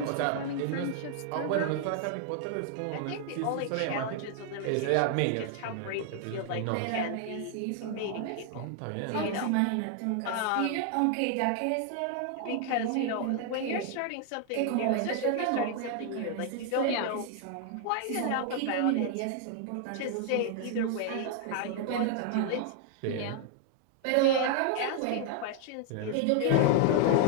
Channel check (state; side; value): different; both; correlation 0.00